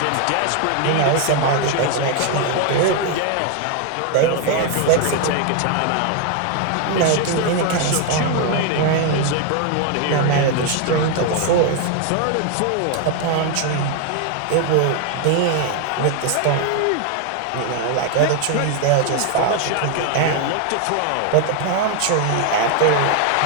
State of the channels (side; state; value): both; different; correlation 0.00